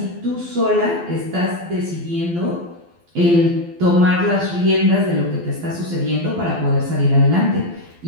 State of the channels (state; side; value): late; left; 12 ms